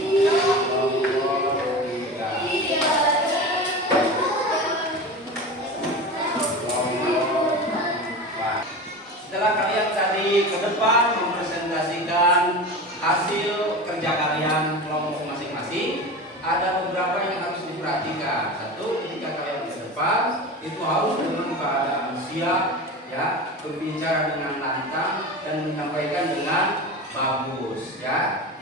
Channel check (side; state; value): both; normal; correlation 0.29